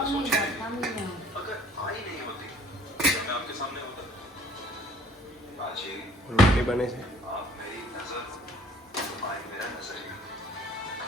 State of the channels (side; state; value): both; normal; correlation 0.56